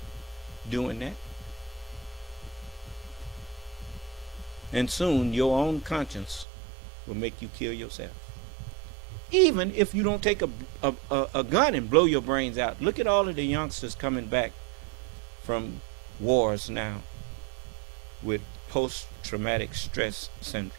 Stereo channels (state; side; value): drops out; left; at 6.5 s